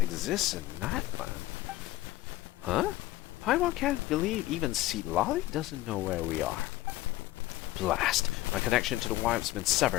in Nightland. Huh? Paimon can't believe even Sea Lolly doesn't know where we are. Blast! My connection to the wipe's been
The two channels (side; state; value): right; quieter; 16.7 dB